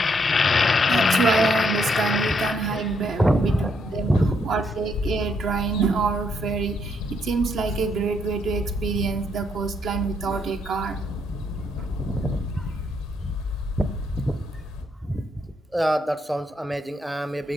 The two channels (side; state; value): both; normal; correlation 0.74